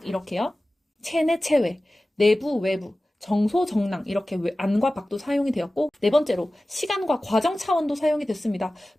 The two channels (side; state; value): both; normal; correlation 0.96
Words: 이렇게요. 체내 체외, 내부 외부, 정소 정랑 이렇게 안과 밖도 사용이 되었고, 네 번째로 시간과 과정 차원도 사용이 됐습니다.